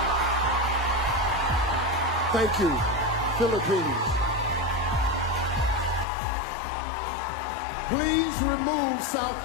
Thank you, Philippines. Please remove South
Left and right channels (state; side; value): drops out; right; at 6.1 s